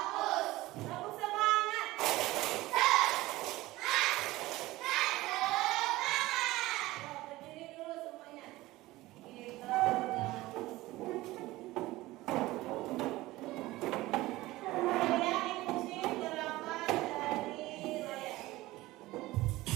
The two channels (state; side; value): quieter; left; 18.4 dB